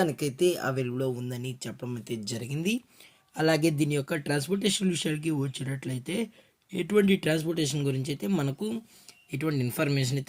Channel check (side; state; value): both; identical; correlation 1.00